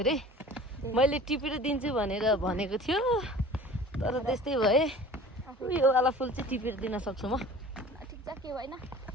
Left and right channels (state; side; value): normal; both; correlation 0.43